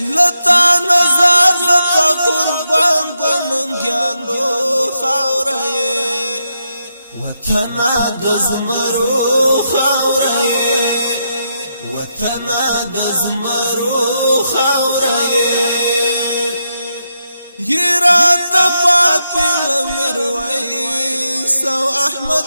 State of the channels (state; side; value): inverted; both; correlation -0.83